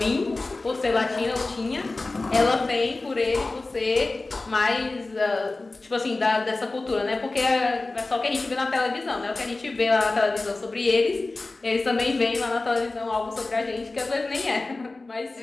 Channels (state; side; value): quieter; right; 3.3 dB